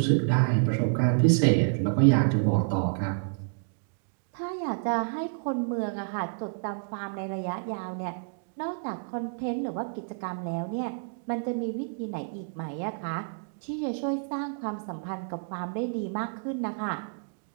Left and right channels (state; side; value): silent; left; digital silence